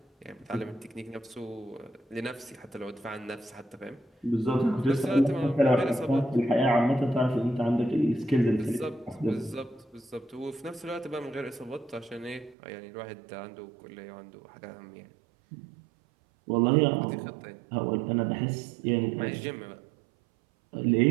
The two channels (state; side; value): drops out; left; at 12.6 s